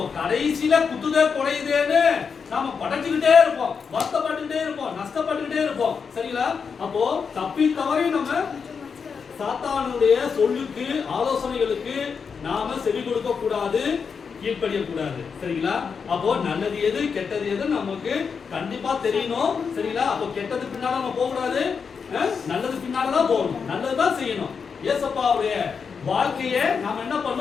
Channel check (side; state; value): right; quieter; 5.9 dB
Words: கடைசியில குத்துதே குறையுதேன்னு நாம படைச்சுக்கிட்டே இருப்போம், வருத்தப்பட்டுக்கிட்டே இருப்போம், நஷ்டப்பட்டுக்கிட்டே இருப்போம். சரிங்களா? அப்போ தப்பி தவறி நம்ம சாத்தானுடைய சொல்லுக்கு ஆலோசனைகளுக்கு நாம செவி கொடுக்க கூடாது, கீழ்ப்படிய கூடாது. சரிங்களா? அப்போ நல்லது எது கெட்டது எது நமக்கு கண்டிப்பா தெரியணும். சரிங்களா? அப்போ கெட்டது பின்னால நம்ம போக கூடாது, நல்லது பின்னாலதான் போகணும், நல்லதுதான் செய்யணும். ஏசப்பாவுடைய வாழ்க்கையை நாம என்ன